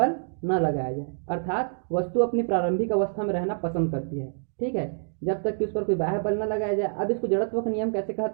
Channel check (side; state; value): left; silent; digital silence